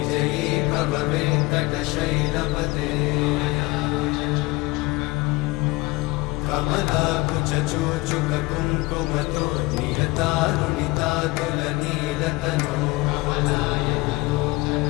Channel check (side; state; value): right; quieter; 22.2 dB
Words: भव वेङ्कटशैलपते कमलाकुचूचुककुङ्कुमतो नियतारुणितातुलनीलतनो